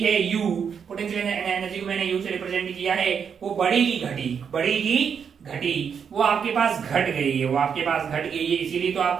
है u, पोटेंशियल एनर्जी को मैंने u से रिप्रेजेंट किया है, वो बढ़ेगी घटी, बढ़ेगी घटी, वो आपके पास घट गई है, वो आपके पास घट गई है, इसीलिए तो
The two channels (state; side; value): quieter; left; 7.0 dB